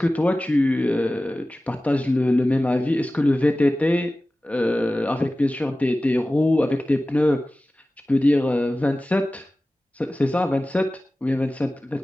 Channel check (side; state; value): both; normal; correlation 0.96